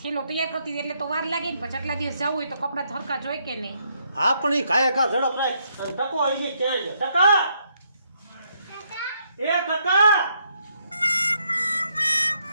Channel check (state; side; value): inverted; both; correlation -0.74